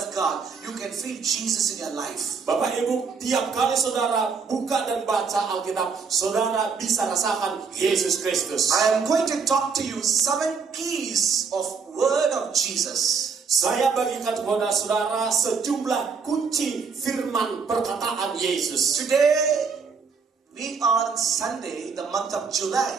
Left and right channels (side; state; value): left; quieter; 5.4 dB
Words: God, you can feel Jesus in your life. Bapak Ibu, tiap kali saudara buka dan baca Alkitab, saudara bisa rasakan Yesus Kristus. I am going to talk to you 7 keys of word of Jesus. Saya bagikan kepada saudara sejumlah kunci firman perkataan Yesus. Today, we are on Sunday, the month of